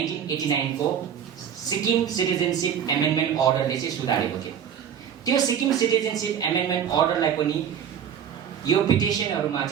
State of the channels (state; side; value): quieter; left; 8.5 dB